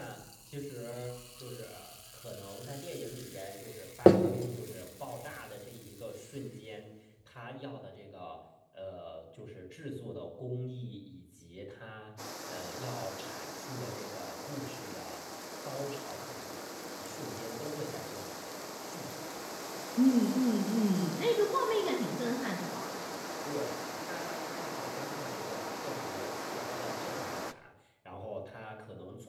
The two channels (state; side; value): identical; both; correlation 1.00